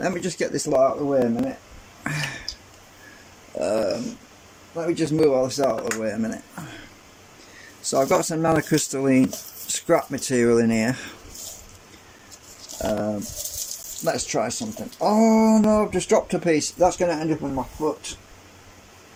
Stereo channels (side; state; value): both; identical; correlation 1.00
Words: me just get this lot out of the way a minute. Let me just move all this out of the way a minute. So I've got some nanocrystalline scrap material in here. Let's try something. Oh no, I've just dropped a piece. That's going to end up on my foot.